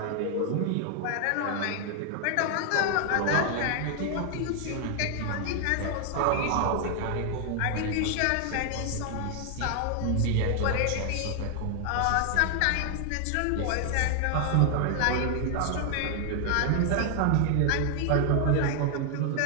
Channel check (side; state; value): both; different; correlation 0.00